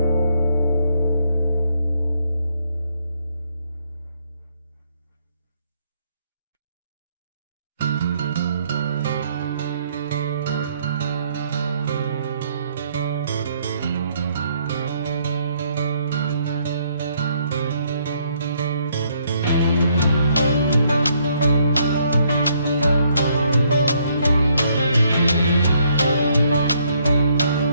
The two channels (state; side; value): inverted; both; correlation -0.69